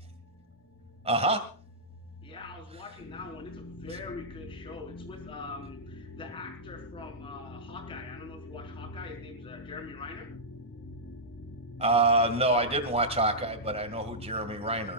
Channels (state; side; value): normal; both; correlation -0.10